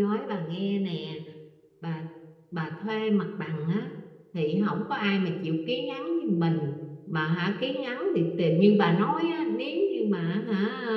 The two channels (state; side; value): identical; both; correlation 1.00